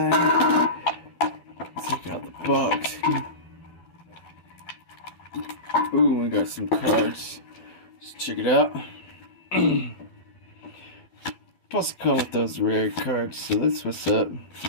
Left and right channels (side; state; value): right; late; 12 ms